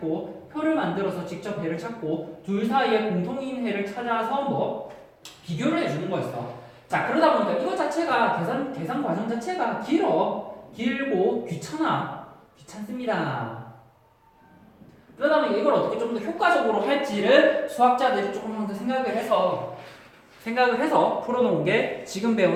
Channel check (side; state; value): both; identical; correlation 1.00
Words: 둘 사이에 공통인 해를 찾아서 뭐 비교를 해주는 거였어. 자, 그러다 보니까 이거 자체가 계산 과정 자체가 길고 귀찮습니다. 그러다 보니 이걸 어떻게 좀 더 효과적으로 할지를 수학자들이 조금 더 생각을 해서 풀어놓은 게 지금